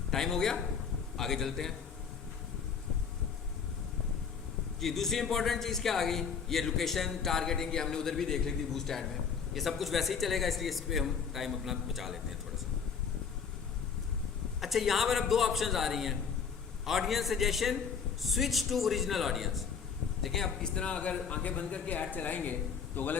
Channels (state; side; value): quieter; right; 6.4 dB